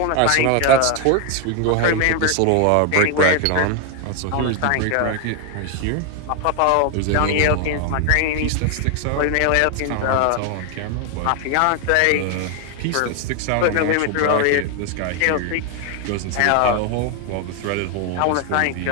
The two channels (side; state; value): both; different; correlation 0.01